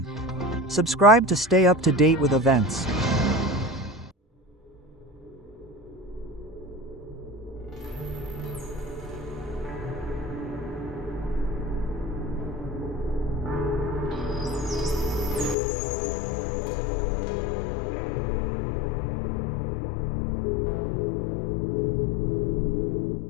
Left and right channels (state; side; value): drops out; right; at 15.6 s